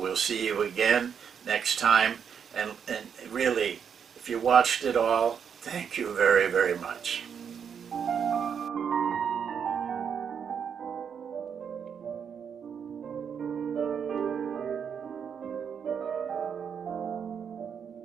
see you again next time. And really, if you watched it all, thank you very, very much.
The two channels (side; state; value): left; quieter; 7.3 dB